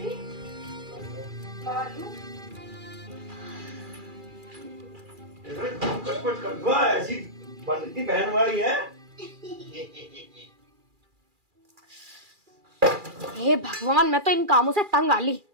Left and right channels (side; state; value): left; late; 2.4 ms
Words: आलू। कुछ कर दो, ऐसी बनती बहन वाली है। हे भगवान, मैं तो इन कामों से तंग आ ली।